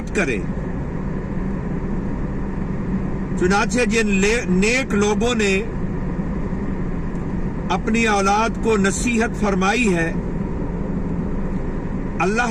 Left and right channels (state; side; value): identical; both; correlation 1.00